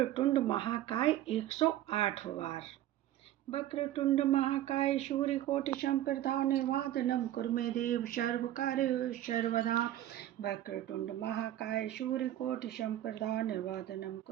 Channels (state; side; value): quieter; left; 13.1 dB